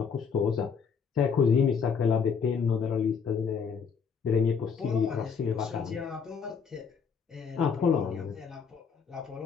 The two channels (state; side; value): quieter; right; 6.2 dB